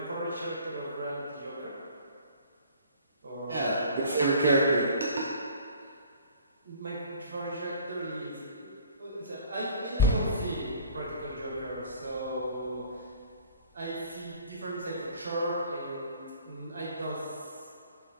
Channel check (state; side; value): inverted; both; correlation -0.52